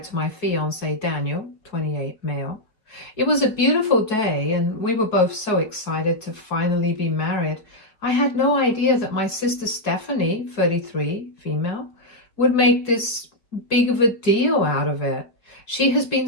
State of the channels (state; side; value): late; right; 4.7 ms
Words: to my fiance, Daniel, 28, male. It was a beautiful day, and we were both so excited to finally be married. I had no idea that my sister Stephanie, 33, female, would make this big of a deal out of it. She has been